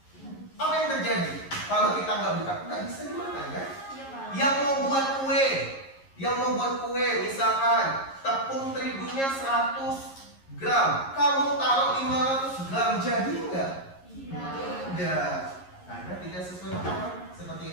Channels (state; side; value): late; right; 11 ms